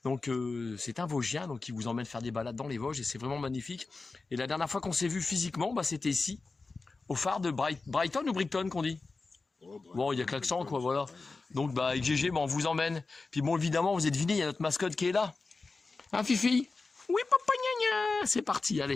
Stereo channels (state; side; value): quieter; right; 3.9 dB